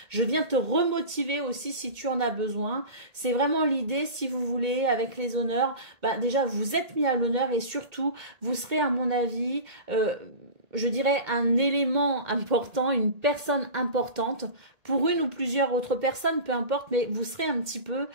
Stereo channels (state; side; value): late; left; 1.8 ms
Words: je viens te remotiver aussi si tu en as besoin. C'est vraiment l'idée, si vous voulez, avec les honneurs, déjà vous êtes mis à l'honneur et surtout vous serez à mon avis, je dirais un élément important, une personne importante pour une ou plusieurs autres personnes, peu importe, mais vous serez un petit peu